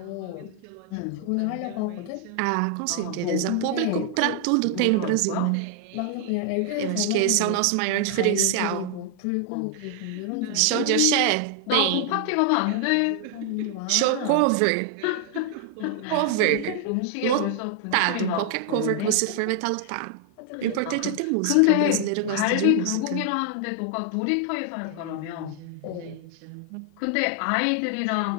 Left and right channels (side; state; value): both; different; correlation 0.00